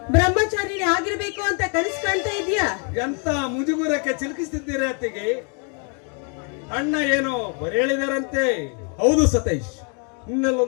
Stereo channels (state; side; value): quieter; right; 38.7 dB